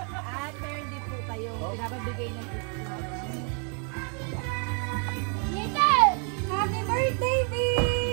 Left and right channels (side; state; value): left; quieter; 39.8 dB